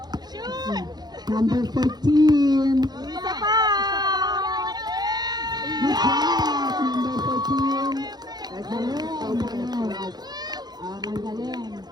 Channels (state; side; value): late; left; 0.20 ms